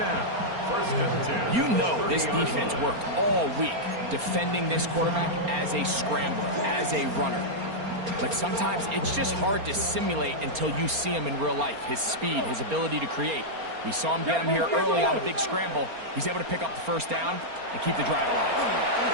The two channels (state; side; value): late; left; 4.3 ms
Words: First and 10. You know this defense worked all week defending this quarterback as a scrambler, as a runner. But sometimes it's just hard to simulate until you see him in real life. His speed, his ability to create. We saw him get him here early on a big scramble. He's able to pick up the first down and keep the drive alive.